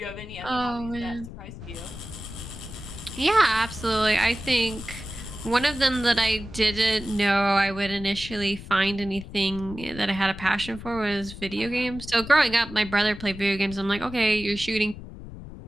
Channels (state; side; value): noise; left; rumble, 13 dB below the sound